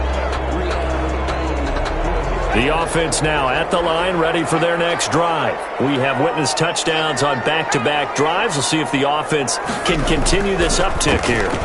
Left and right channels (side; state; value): both; identical; correlation 1.00